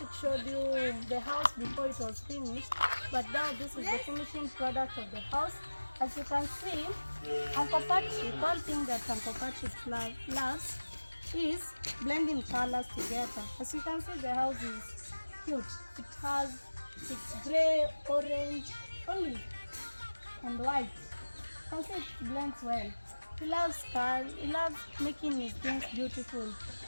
showed you the house before it was finished, but now this is the finishing product of the house. As you can see, Uncle Patrick, one thing that Uncle Patrick loves is blending colors together. As you can see, the house is cute. It's gray, orange, olive, and white. You can see it blends well. He loves cars. He loves making his things beautiful.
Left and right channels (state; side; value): inverted; both; correlation -1.00